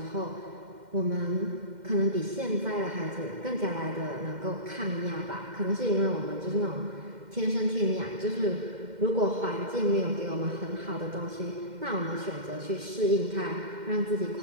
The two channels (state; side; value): late; left; 2.1 ms